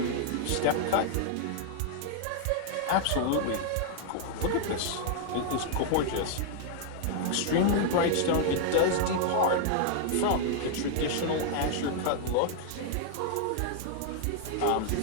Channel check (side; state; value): both; different; correlation 0.00